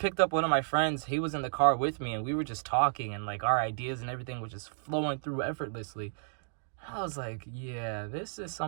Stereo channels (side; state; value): left; silent; digital silence